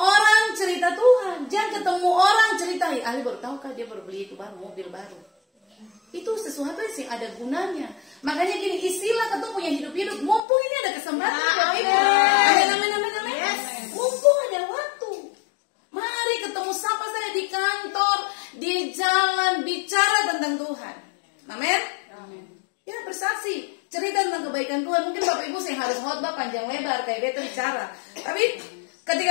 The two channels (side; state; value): right; drops out; at 10.4 s